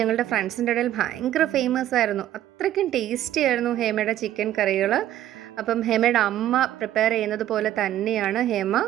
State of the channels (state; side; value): quieter; left; 12.5 dB